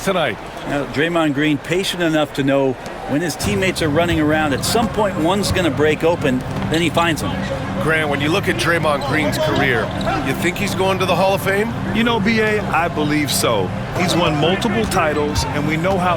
tonight. Now, Draymond Green patient enough to know when his teammates are running around, at some point one's going to break open, then he finds them. Grant, when you look at Draymond Green's career, you think he's going to the Hall of Fame? You know, B.A., I believe so. He's won multiple titles, and we know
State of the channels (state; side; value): identical; both; correlation 1.00